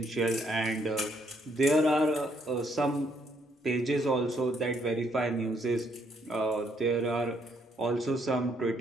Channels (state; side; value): normal; both; correlation 0.71